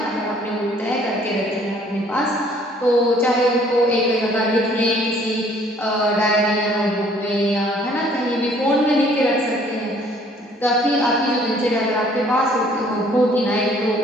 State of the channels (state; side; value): normal; both; correlation 0.59